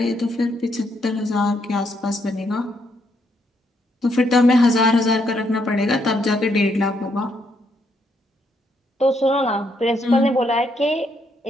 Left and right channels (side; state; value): both; normal; correlation 0.75